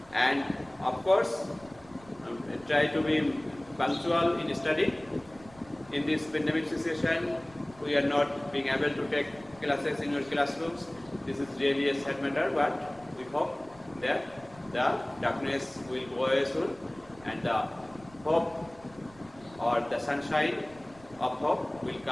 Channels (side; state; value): right; noise; rumble, 24 dB below the sound